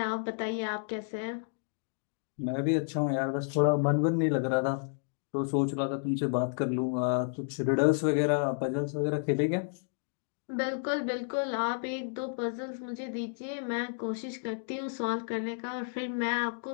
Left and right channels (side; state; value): right; silent; digital silence